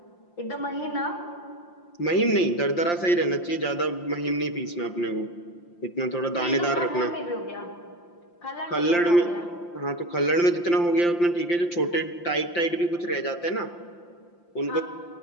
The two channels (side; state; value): right; late; 5.8 ms